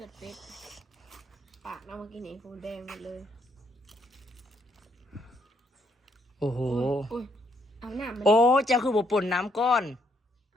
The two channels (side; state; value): both; normal; correlation 0.72